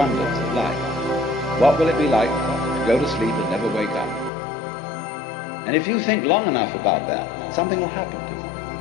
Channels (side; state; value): right; drops out; at 4.3 s